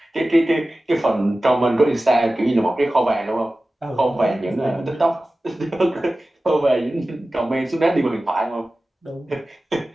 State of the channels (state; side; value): normal; both; correlation 0.96